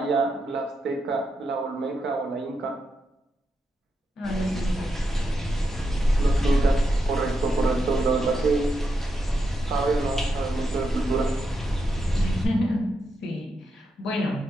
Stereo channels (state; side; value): normal; both; correlation 0.84